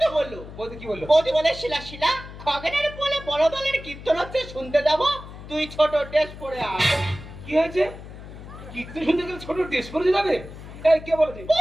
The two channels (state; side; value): noise; left; hum, 14 dB below the sound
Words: তো বললো। বৌদি কি বললো? বৌদি বলে শিলা শিলা, খগেনের বলে বড় দলের কীর্তন হচ্ছে, শুনতে যাবো, তুই ছোট টেস্ট করে আয়। কি হয়েছে? কীর্তন শুনতে গেলে ছোট ড্রেস পরে যাবে? এই কে বলেছে?